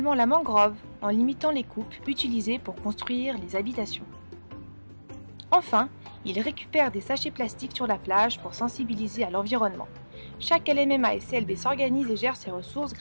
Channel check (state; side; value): inverted; both; correlation -1.00